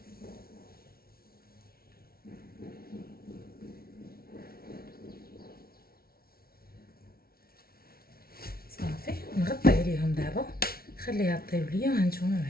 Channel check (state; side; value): late; right; 0.44 ms